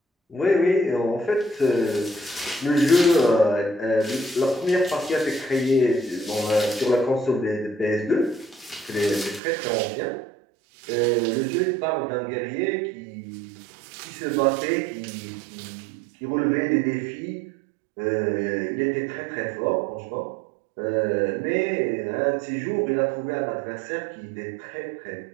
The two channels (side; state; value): left; drops out; at 9.4 s